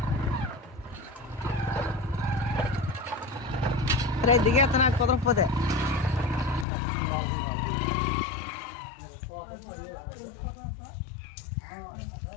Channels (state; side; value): drops out; right; at 6.7 s